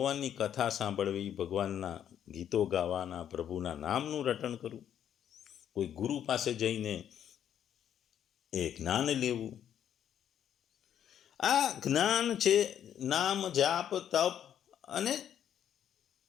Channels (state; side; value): quieter; right; 9.8 dB